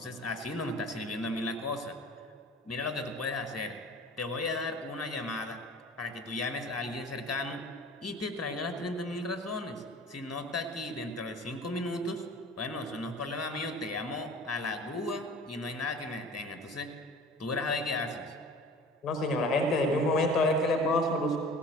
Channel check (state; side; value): normal; both; correlation 0.42